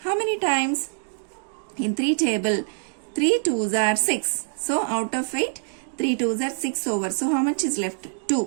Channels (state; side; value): silent; left; digital silence